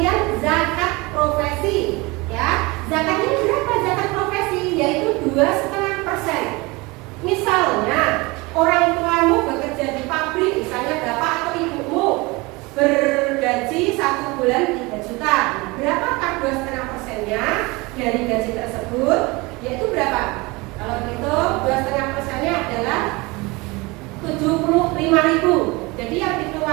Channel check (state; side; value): quieter; left; 24.3 dB